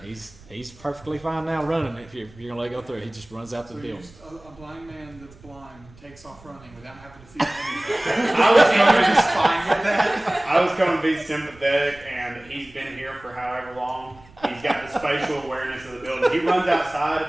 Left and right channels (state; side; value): noise; right; rumble, 24 dB below the sound